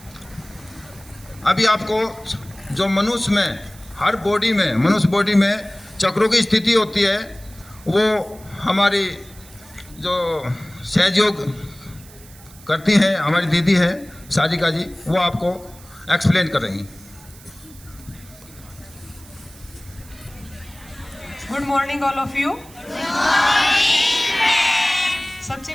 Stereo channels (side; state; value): right; noise; hiss, 22 dB below the sound